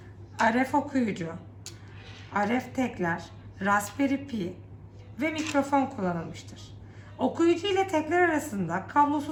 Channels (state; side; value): identical; both; correlation 1.00